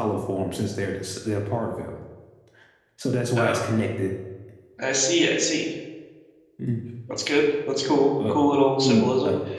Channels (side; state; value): both; identical; correlation 1.00